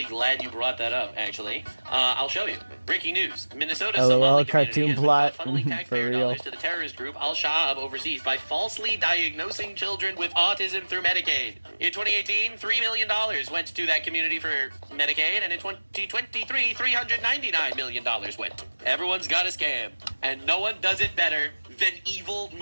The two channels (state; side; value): inverted; both; correlation -1.00